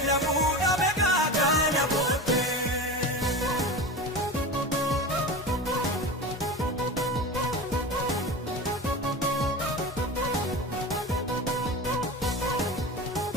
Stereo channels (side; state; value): both; normal; correlation 0.29